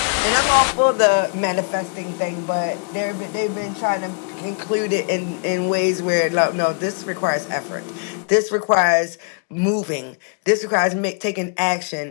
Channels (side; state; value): right; quieter; 38.3 dB